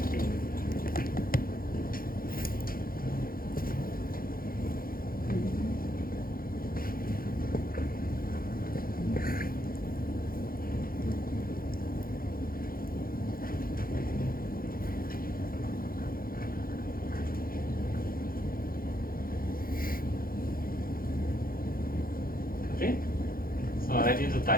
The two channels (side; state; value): right; late; 0.42 ms